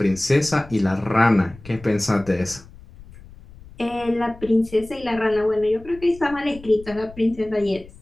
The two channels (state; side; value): noise; left; rumble, 20 dB below the sound